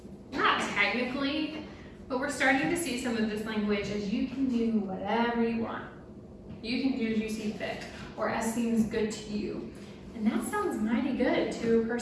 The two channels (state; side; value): identical; both; correlation 1.00